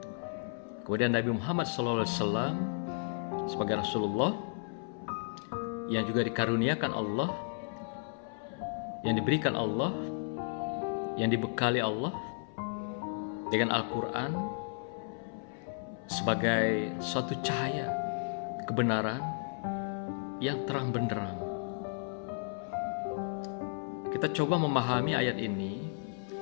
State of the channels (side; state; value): right; silent; 55 dB below the other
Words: Kemudian Nabi Muhammad SAW sebagai Rasulullah yang juga dikaruniakan Allah, yang diberikan Allah, yang dibekali Allah dengan Al-Quran sebagai suatu cahaya kebenaran yang terang benderang. Kita coba memahami ayat ini